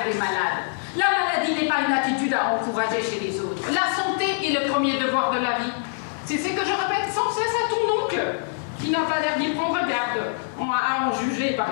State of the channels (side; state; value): right; silent; digital silence